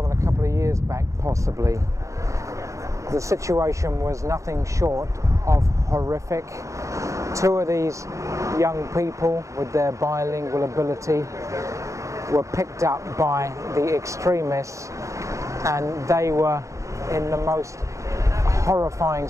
than a couple of years back, possibly. The situation was nothing short of horrific. Two of these young people with their bilingual ability were picked up by the extremists, and they were in the most horrifying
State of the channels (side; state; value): left; late; 0.15 ms